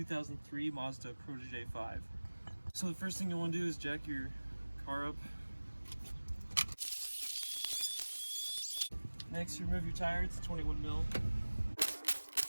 Mazda Protege 5. So the first thing you want to do is jack your car up. Next, remove your tire. It's a 21 mil.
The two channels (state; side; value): inverted; both; correlation -1.00